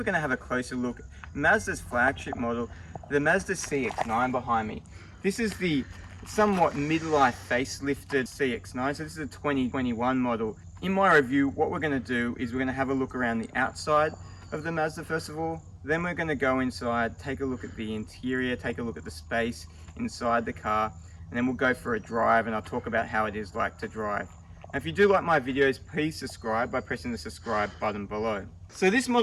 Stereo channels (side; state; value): both; identical; correlation 1.00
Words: going to have a closer look at Mazda's flagship model, the Mazda CX-9 behind me. This is the somewhat midlife facelifted CX-9, so this is a 2021 model. In my review, what we're going to do is we're going to have a look around the outside of the Mazda first of all, then we're going to go inside, take a look at the interior, take a look at the space inside the car, and then we'll go for a drive and I'll talk about how it is like to drive. And if you do like my videos, please subscribe by pressing the subscribe button below. So this